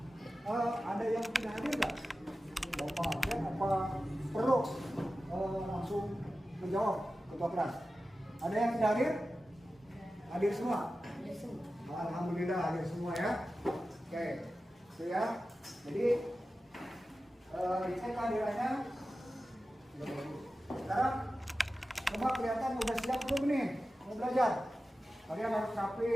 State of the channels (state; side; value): normal; both; correlation 0.94